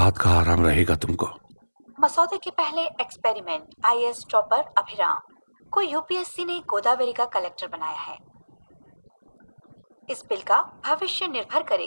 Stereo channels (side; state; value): both; inverted; correlation -1.00